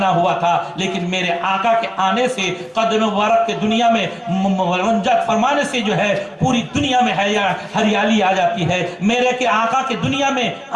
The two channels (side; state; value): both; identical; correlation 1.00